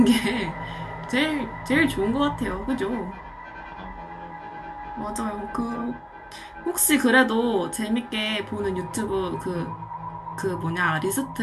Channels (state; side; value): identical; both; correlation 1.00